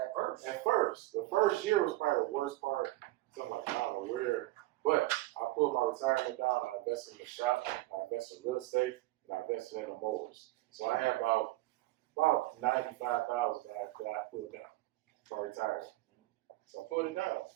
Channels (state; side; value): quieter; left; 18.4 dB